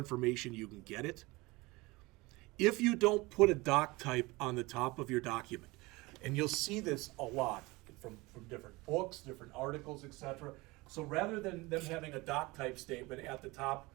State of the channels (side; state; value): left; quieter; 22.8 dB